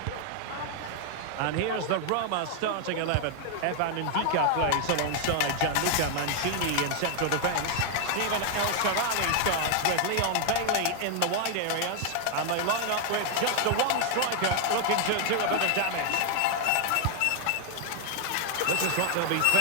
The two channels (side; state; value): both; different; correlation 0.00